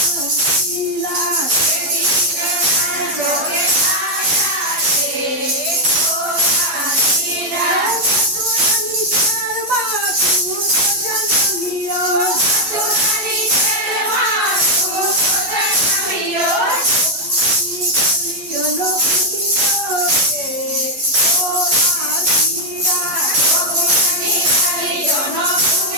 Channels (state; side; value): late; left; 12 ms